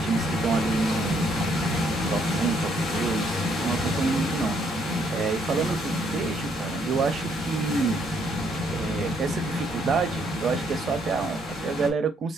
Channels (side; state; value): both; normal; correlation 0.70